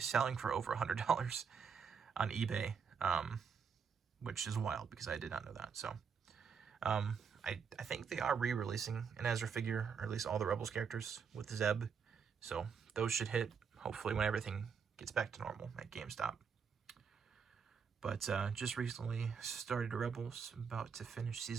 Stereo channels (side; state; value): left; quieter; 6.3 dB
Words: selling for over $100 on eBay, which is wild because I did not know that. So I think they are re-releasing an Ezra figure, or at least all the Rebels characters with Zeb. So those should hit, hopefully, when everything gets back to normal at GameStop. But just recently started Rebels, about to finish